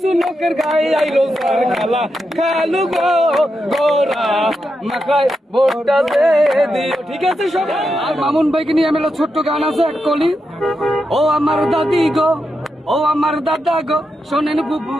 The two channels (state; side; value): normal; both; correlation 0.86